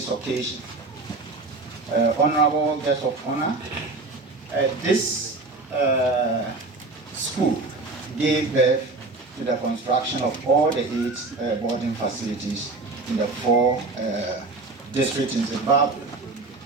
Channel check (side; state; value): left; quieter; 3.5 dB